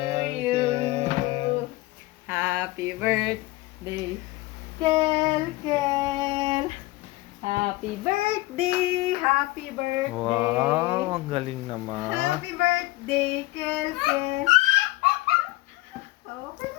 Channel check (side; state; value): right; quieter; 20.0 dB